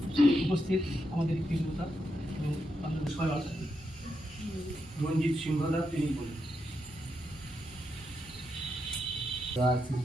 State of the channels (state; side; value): normal; both; correlation 0.84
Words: উপস্থিত আমাদের কৃতজ্ঞতা এবং আমাদের সহায়তা রঞ্জিত সিংহদা তিনি বলেন। শ্রী